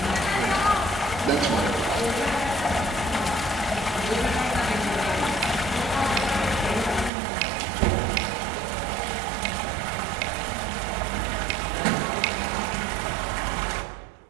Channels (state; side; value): drops out; left; at 7.1 s